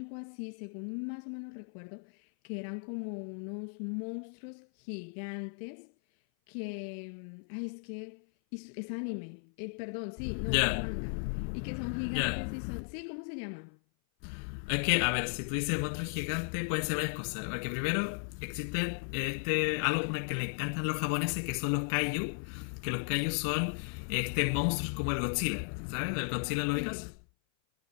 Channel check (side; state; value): right; silent; 54 dB below the other